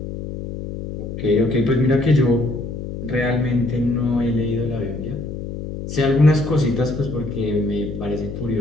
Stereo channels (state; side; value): noise; left; hum, 7 dB below the sound